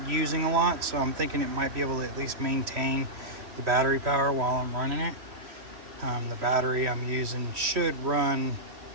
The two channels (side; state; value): left; late; 3.1 ms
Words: using a lot, so I'm thinking it might be able to at least maintain the battery power while I'm running it. The battery I'm using should run